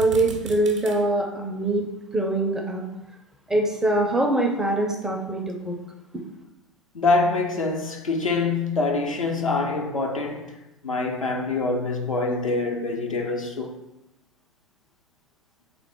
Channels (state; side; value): normal; both; correlation 0.42